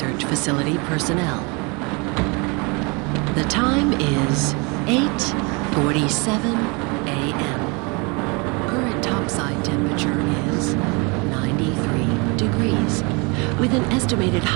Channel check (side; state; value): left; quieter; 29.6 dB